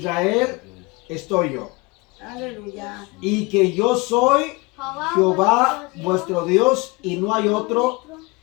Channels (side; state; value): right; quieter; 25.3 dB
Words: estoy yo, Aleluya. y que yo soy Jehová vuestro Dios y no hay otro,